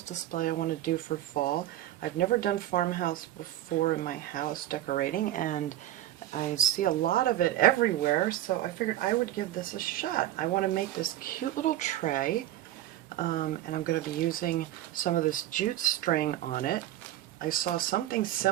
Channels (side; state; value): left; quieter; 13.8 dB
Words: I want to do for fall. I've never done farmhouse before in my house decorating, and I see a lot of it everywhere, so I figured I would give this a shot. I want to make this cute little tray, and I'm going to be using some of this jute string on it. I saw something